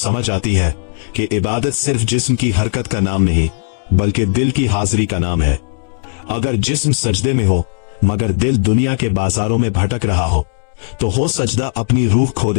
आती है कि इबादत सिर्फ जिस्म की हरकत का नाम नहीं, बल्कि दिल की हाजिरी का नाम है। अगर जिस्म सजदे में हो मगर दिल दुनिया के बाजारों में भटक रहा हो सजदा अपनी रूह खो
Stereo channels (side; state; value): right; silent; digital silence